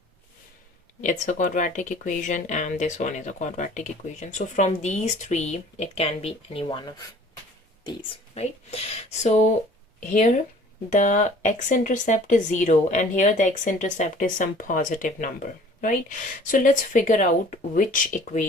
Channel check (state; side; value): normal; both; correlation 0.51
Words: it's a quadratic equation, and this one is a quadratic equation. So from these 3, it can be any one of these, right? So here the x-intercept is 0 and here the x-intercept is some positive number, right? So let's figure out which